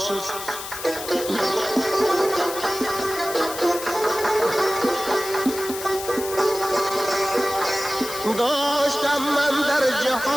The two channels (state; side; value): noise; left; hiss, 9 dB below the sound